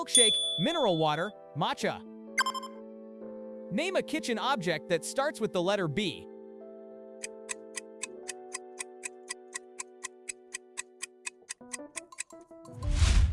mineral water, matcha. Name a kitchen object that starts with the letter B.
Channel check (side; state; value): both; identical; correlation 1.00